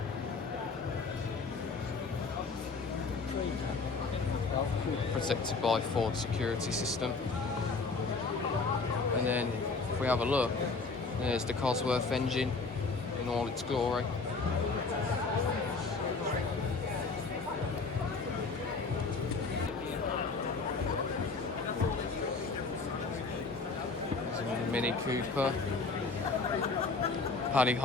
Protected by Ford security system. And then if we have a look, there's the Cosworth engine in all its glory. There's a Mini Cooper, Paddy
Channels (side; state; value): right; quieter; 4.2 dB